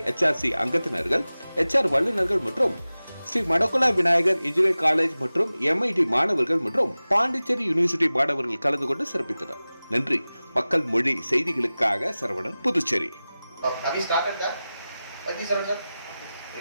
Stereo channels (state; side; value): inverted; both; correlation -0.97